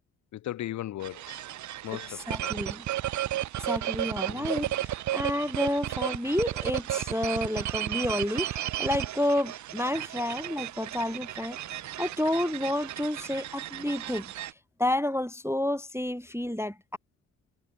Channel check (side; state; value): both; normal; correlation 0.59